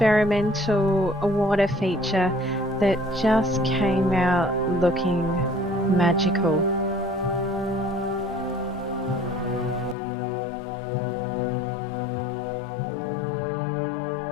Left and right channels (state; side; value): drops out; right; at 10.0 s